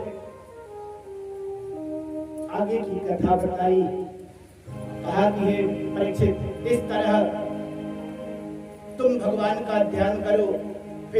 आगे की कथा बताई, कहा कि हे परीक्षित, इस तरह तुम भगवान का ध्यान करो।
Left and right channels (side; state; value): both; identical; correlation 1.00